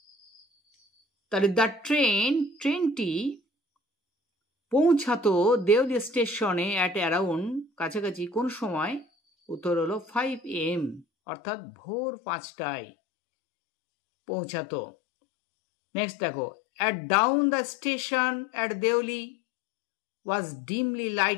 তাহলে দ্য ট্রেন, ট্রেনটি পৌঁছাতো দেওলি স্টেশনে অ্যাট অ্যারাউন্ড, কাছাকাছি, কোন সময়? উত্তর হলো 5 AM, অর্থাৎ ভোর 5টায় পৌঁছাতো। নেক্সট দেখো, at dawn the station at Deoli was dimly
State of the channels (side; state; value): right; drops out; at 11.1 s